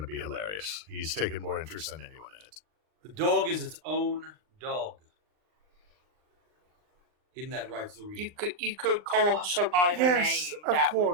be hilarious. He's taken more interest than anyone in it. The dog is its own dog. Isn't that right, Zuri? You could call her by her name. Of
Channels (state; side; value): late; left; 39 ms